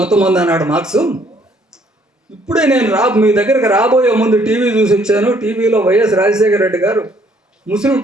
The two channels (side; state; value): both; normal; correlation 0.64